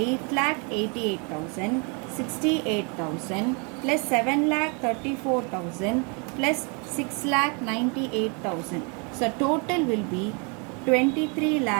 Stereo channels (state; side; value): quieter; left; 34.3 dB